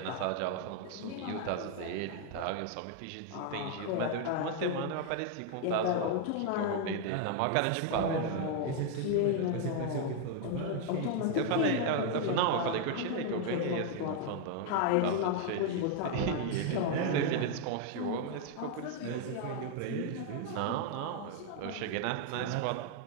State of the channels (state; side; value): different; both; correlation 0.00